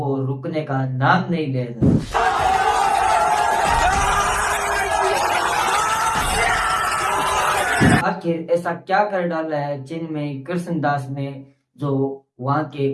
रुकने का नाम नहीं ले रहा। आखिर ऐसा क्या कर डाला है चिन्मय कृष्णदास ने जो वहाँ के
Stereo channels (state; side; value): identical; both; correlation 1.00